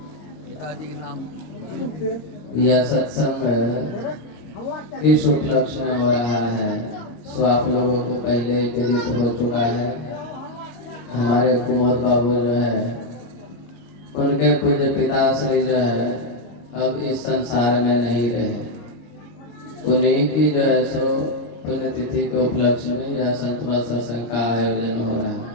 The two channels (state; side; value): late; right; 25 ms